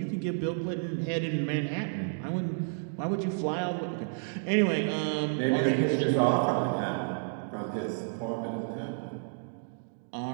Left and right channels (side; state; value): left; silent; digital silence